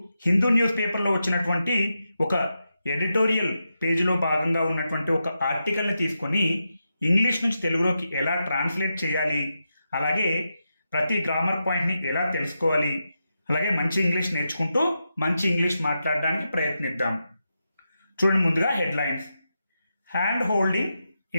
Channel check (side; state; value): both; inverted; correlation -0.87